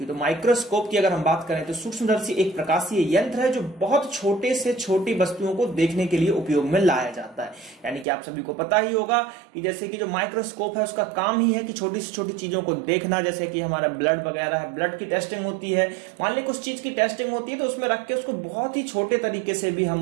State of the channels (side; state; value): left; drops out; at 8.1 s